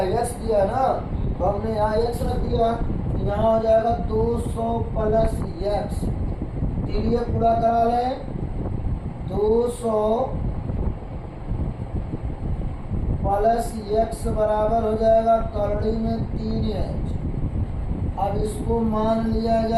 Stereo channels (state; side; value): identical; both; correlation 1.00